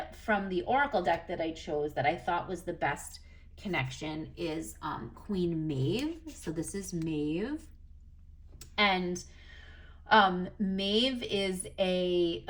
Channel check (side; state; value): both; identical; correlation 1.00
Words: from the Oracle deck that I chose that I thought was the best connection is Queen Maeve. So this is Maeve. And Maeve is a